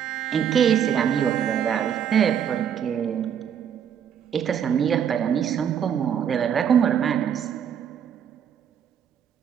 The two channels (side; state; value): left; quieter; 8.6 dB